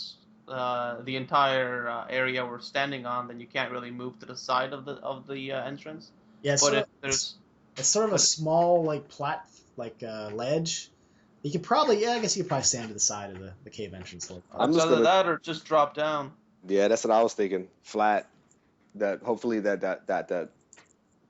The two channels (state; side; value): identical; both; correlation 1.00